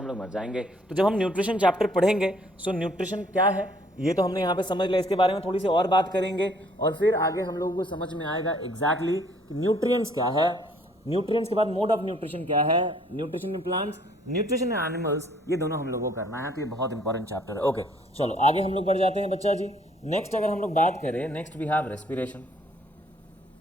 लोग मर जाएंगे। तो जब हम न्यूट्रिशन चैप्टर पढ़ेंगे, सो न्यूट्रिशन क्या है ये तो हमने यहाँ पे समझ लिया, इसके बारे में थोड़ी सी और बात करेंगे और फिर आगे हम लोगों को समझ में आएगा एग्जैक्टली कि न्यूट्रिएंट्स क्या है, न्यूट्रिएंट्स के बाद मोड ऑफ न्यूट्रिशन क्या है, nutrition in plants, nutrition in animals, ये दोनों हम लोगों को करना है। तो ये बहुत इंपॉर्टेंट चैप्टर है। ओके, चलो आगे हम लोग बढ़ जाते हैं बच्चा जी। नेक्स्ट अगर हम लोग बात करें, next we have respiration.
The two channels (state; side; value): normal; both; correlation 0.62